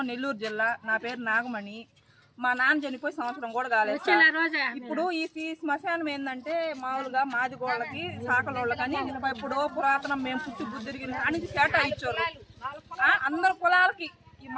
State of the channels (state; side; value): identical; both; correlation 1.00